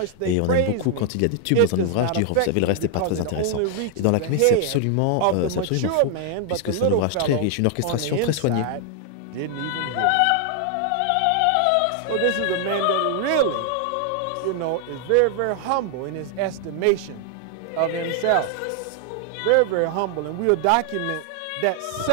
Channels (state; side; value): different; both; correlation 0.00